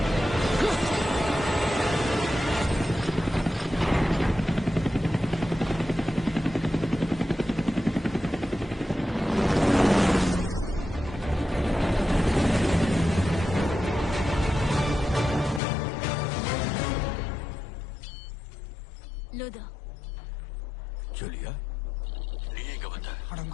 லோதா. ஜூலியா, நீ எங்க வந்த?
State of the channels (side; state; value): right; drops out; at 15.6 s